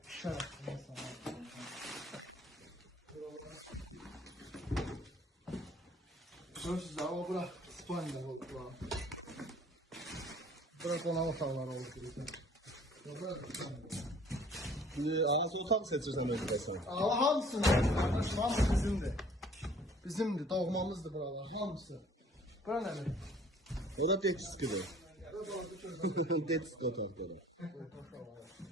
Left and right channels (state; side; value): normal; both; correlation 0.54